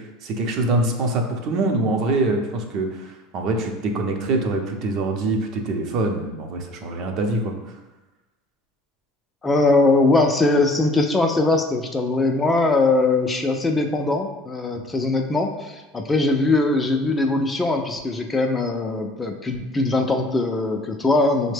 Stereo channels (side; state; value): both; normal; correlation 0.50